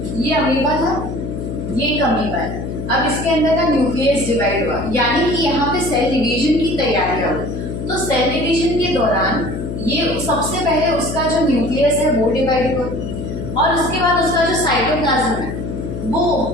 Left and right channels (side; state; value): left; noise; hum, 6 dB below the sound